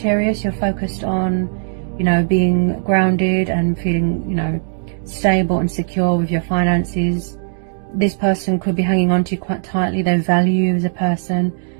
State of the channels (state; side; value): silent; left; digital silence